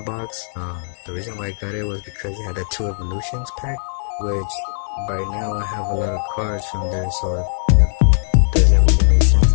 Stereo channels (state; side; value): silent; right; digital silence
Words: box. The reason why I got it was because it had a 2 evolutions pack, which by now I have a lot of cards from there, so it doesn't really make sense